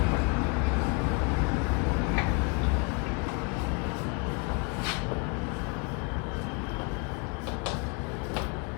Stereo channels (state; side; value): quieter; right; 33.5 dB